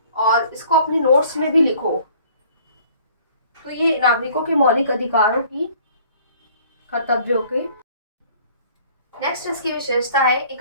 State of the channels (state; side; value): inverted; both; correlation -0.54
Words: और इसको अपनी नोट्स में भी लिखो। तो ये नागरिकों के मौलिक अधिकारों की, कर्तव्यों के। नेक्स्ट इसकी विशेषता है